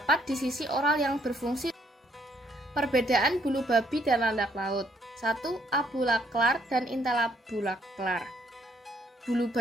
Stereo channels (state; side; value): normal; both; correlation 0.69